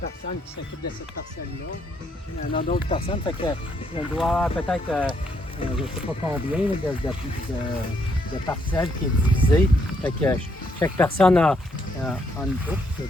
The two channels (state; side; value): normal; both; correlation 0.73